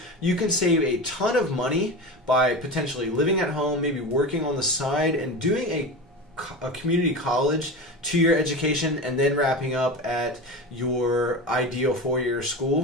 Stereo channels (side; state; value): both; normal; correlation 0.26